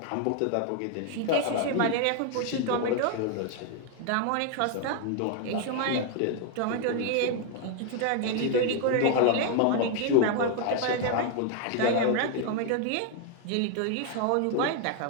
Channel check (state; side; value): different; both; correlation 0.00